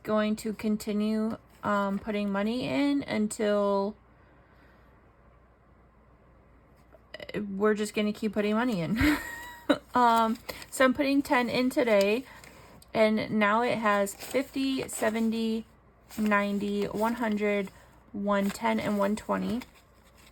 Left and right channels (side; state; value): both; identical; correlation 1.00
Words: going to continue putting money in until we're just going to keep putting money in. So I'm putting 10 in today, and now it has 50, 70, 90, 100, 110, and 120.